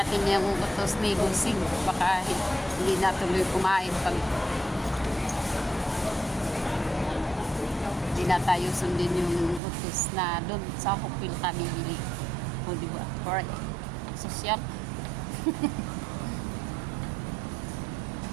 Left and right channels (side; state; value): left; drops out; at 9.6 s